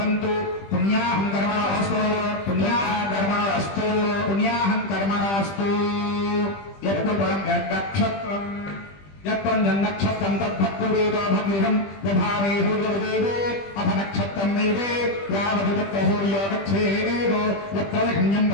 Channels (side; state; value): right; late; 20 ms